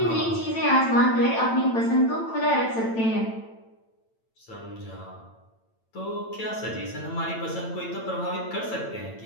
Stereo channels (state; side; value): late; right; 8.9 ms